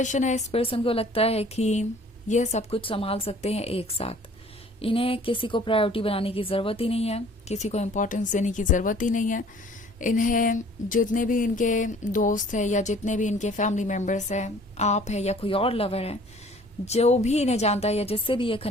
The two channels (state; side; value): normal; both; correlation 0.53